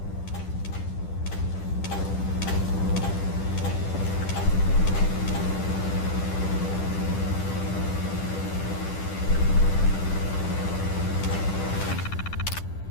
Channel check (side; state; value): right; late; 10 ms